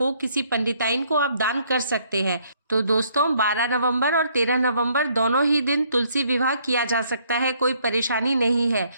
किसी पंडिताइन को आप दान कर सकते हैं। तो दोस्तों 12 नवंबर और 13 नवंबर दोनों ही दिन तुलसी विवाह किया जा सकता है, कोई परेशानी नहीं है,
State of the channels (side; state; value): both; inverted; correlation -0.67